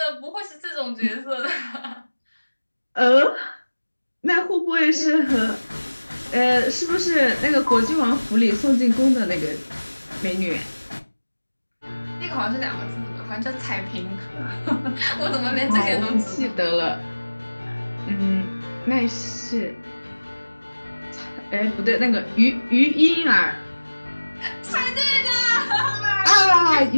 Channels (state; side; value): inverted; both; correlation -1.00